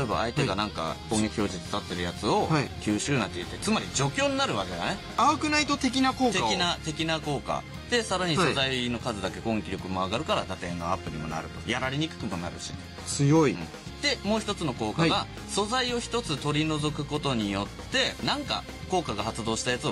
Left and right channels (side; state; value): both; identical; correlation 1.00